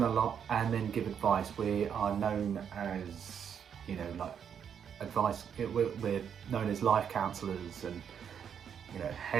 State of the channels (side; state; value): left; quieter; 7.9 dB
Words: a lot and then give advice. We are known as, advice. We're known as life counsellors and,